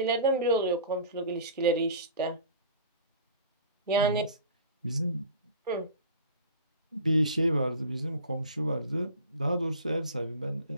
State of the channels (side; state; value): both; inverted; correlation -0.40